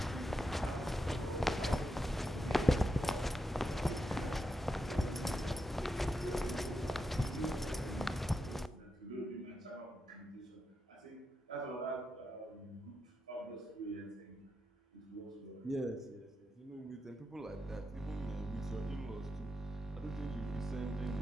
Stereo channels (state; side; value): normal; both; correlation 0.86